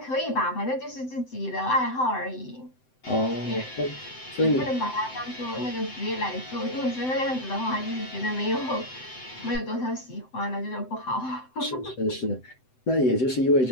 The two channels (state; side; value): late; right; 7.8 ms